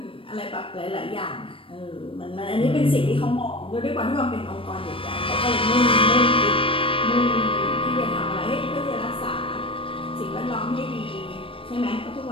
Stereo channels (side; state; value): right; late; 0.26 ms